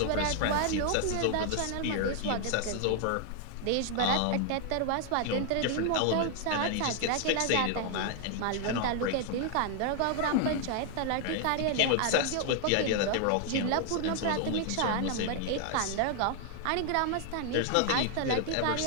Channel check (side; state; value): both; different; correlation 0.00